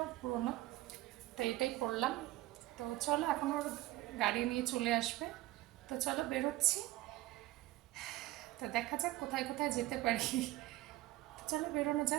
পুরোনো, তো এটাই পরলাম। তো চলো, এখন ওর গাড়ি নিয়ে চলে আসবে, তো চলো বেরোচ্ছি। তো দেখা যাক কোথায় কোথায় যেতে পারি। চলো বেরোনো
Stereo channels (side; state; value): left; quieter; 17.0 dB